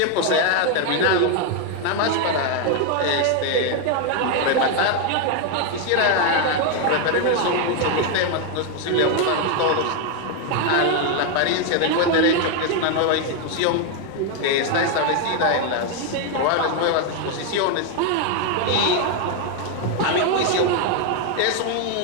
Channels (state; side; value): different; both; correlation 0.01